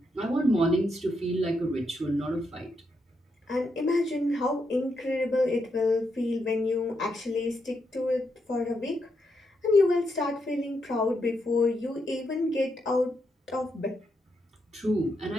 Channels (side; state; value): both; normal; correlation 0.81